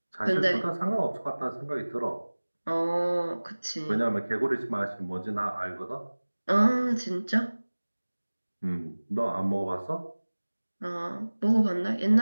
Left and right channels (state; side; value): inverted; both; correlation -1.00